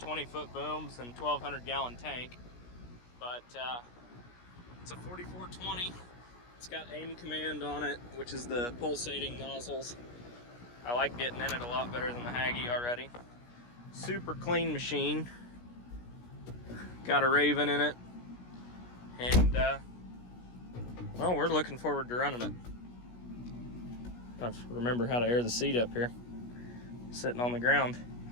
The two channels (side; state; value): right; late; 17 ms